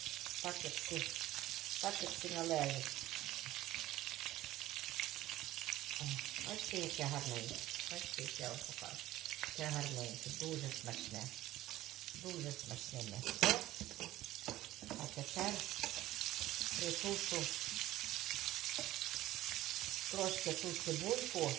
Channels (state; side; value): quieter; left; 15.5 dB